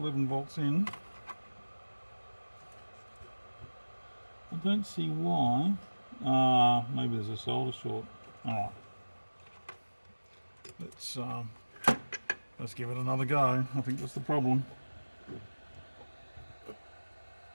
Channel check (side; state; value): both; inverted; correlation -1.00